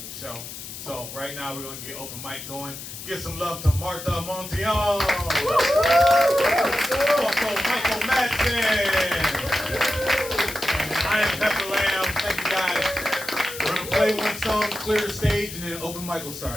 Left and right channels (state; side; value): noise; left; hiss, 11 dB below the sound